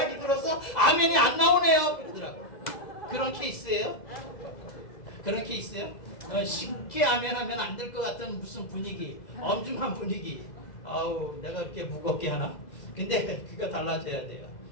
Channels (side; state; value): right; late; 2.0 ms